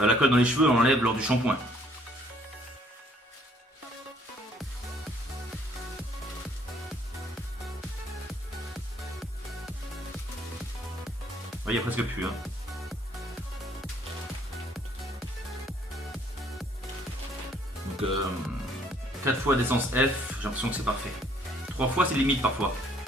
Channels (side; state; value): both; normal; correlation 0.63